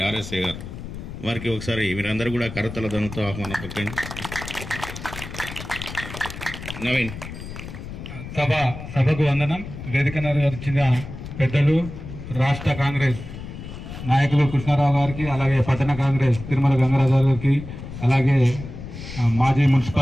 ఆర్ఎస్ఏ గారు వారికి ఒకసారి వీరందరూ కూడా కరతల ధనంతో ఆహ్వానం పట్టండి. నవీన్. సభకు వందనం. వేదిక వచ్చిన పెద్దలు, రాష్ట్ర కాంగ్రెస్ నాయకులు కృష్ణారావు గారికి, అలాగే పట్టణ కాంగ్రెస్ తిరుమల గంగరాజు గారికి, అలాగే మాజీ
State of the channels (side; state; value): left; noise; rumble, 11 dB below the sound